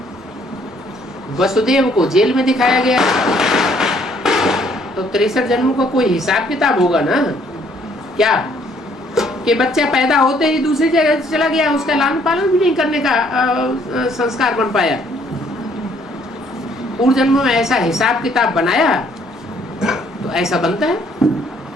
वसुदेव को जेल में दिखाया गया है। तो 63 जन्मों का कोई हिसाब किताब होगा ना। क्या कि बच्चा पैदा होते ही दूसरी जगह चला गया, उसका लालन पालन भी नहीं करने का संस्कार बन पाया। पूर्व जन्मों में ऐसा हिसाब किताब बनाया तो ऐसा बनता है।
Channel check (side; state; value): both; normal; correlation 0.64